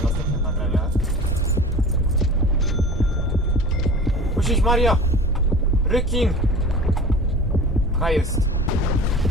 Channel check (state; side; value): normal; both; correlation 0.38